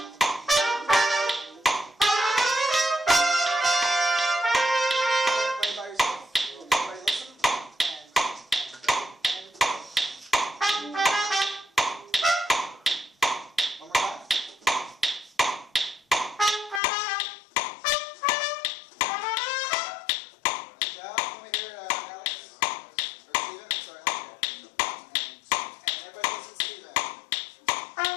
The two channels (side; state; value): right; drops out; at 16.8 s